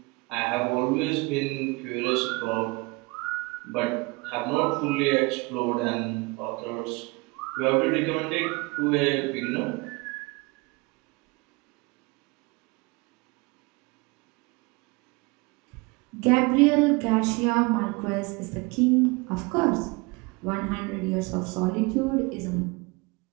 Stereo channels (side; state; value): left; quieter; 26.2 dB